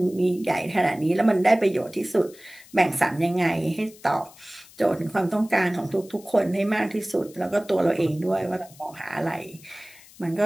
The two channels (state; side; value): noise; left; hiss, 23 dB below the sound